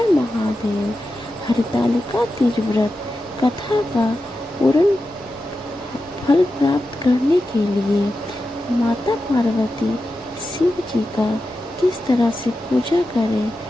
महादेव। हरतालिका तीज व्रत कथा का पूर्ण फल प्राप्त करने के लिए माता पार्वती शिव जी का किस तरह से पूजा करें,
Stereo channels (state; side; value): normal; both; correlation 0.91